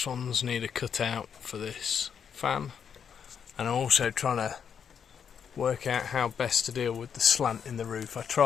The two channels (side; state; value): right; quieter; 7.4 dB